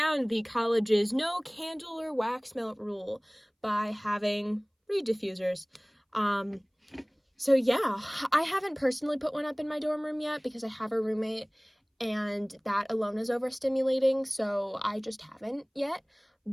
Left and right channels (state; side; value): identical; both; correlation 1.00